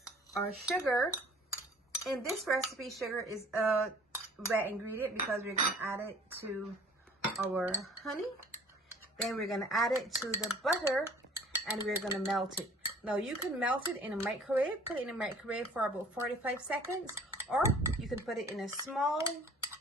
our sugar. In this recipe, sugar is a wet ingredient because we're going to add it to our honey. Then we're going to add it to the butter and we're going to melt it. Now you can melt it in a microwave, put it in a microwave for about 45 seconds, or you can put it in a small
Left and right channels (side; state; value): both; normal; correlation 0.51